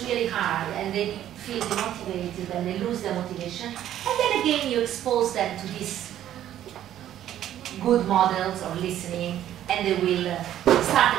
really hard and they feel demotivated and they lose their motivation. And then again, you expose them to these good models or listening, and they will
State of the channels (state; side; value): quieter; left; 11.7 dB